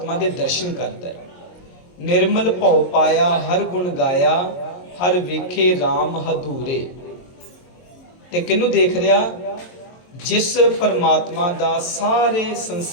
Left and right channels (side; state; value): right; late; 22 ms